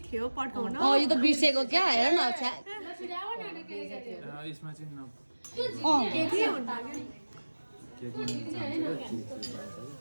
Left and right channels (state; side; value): inverted; both; correlation -1.00